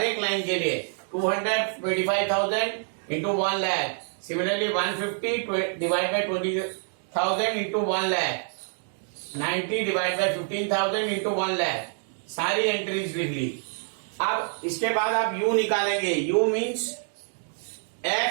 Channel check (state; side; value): silent; left; 59 dB below the other